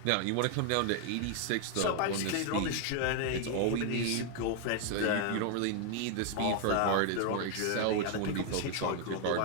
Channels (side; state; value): both; different; correlation 0.00